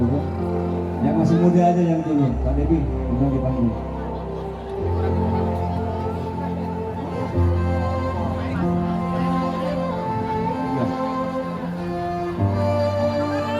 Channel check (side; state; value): both; identical; correlation 1.00